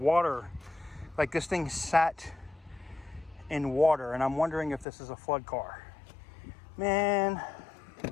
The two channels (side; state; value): right; drops out; at 4.9 s